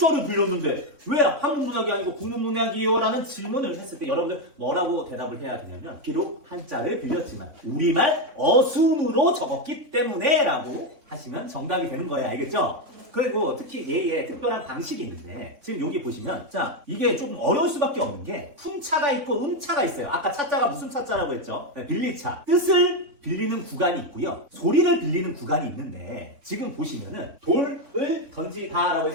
빌렸는데 왜 한문문학이 아니고 국문문학이에요? 라는 질문을 했을 때 여러분들 뭐라고 대답을 해야 되냐면 비록 한자를 빌렸지만 우리말 어순으로 적었기 때문에 라고 하시면 정답이 되는 거예요. 알겠죠? 그리고 특히 얘의 특별한 방식이 있는데 지금 여기 보시면 자, 이게 조금 어려울 수밖에 없는 게 훈차가 있고 음차가 있어요. 아까 차자가 무슨 차자라고 했죠? 빌리차. 뜻을 빌리는 구간이 있고요. 소리를 빌리는 구간이 있는데 지금 보시면은 돌을 던지다라고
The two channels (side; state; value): left; late; 3.6 ms